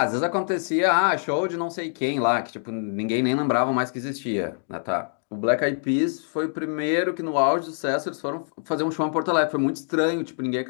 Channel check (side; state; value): right; silent; digital silence